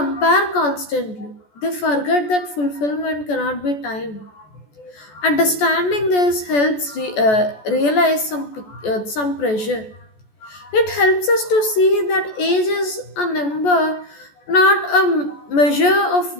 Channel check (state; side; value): late; right; 14 ms